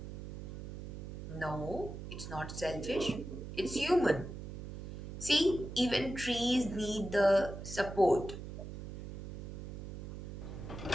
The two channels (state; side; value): noise; right; hum, 9 dB below the sound